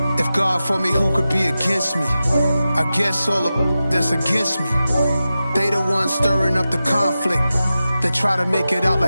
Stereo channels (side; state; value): both; inverted; correlation -0.93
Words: If God for me, who could be against me? I guess all of that's against me. They the ones stirring up the conflict. They try to make it out